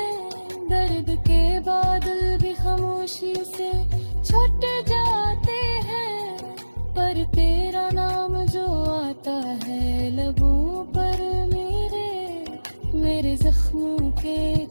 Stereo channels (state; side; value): inverted; both; correlation -1.00